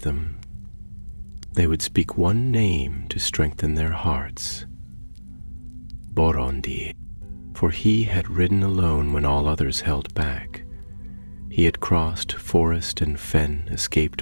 them, they would speak one name to strengthen their hearts: Borondir. For he had ridden alone when all others held back. He had crossed forest and fen,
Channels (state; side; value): inverted; both; correlation -1.00